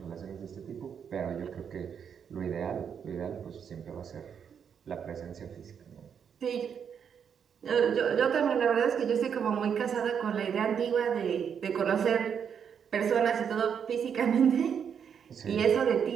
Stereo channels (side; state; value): left; quieter; 7.5 dB